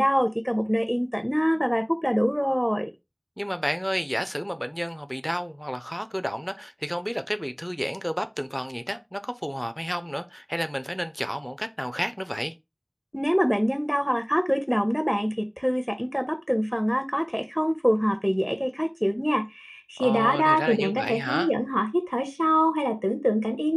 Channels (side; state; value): both; identical; correlation 1.00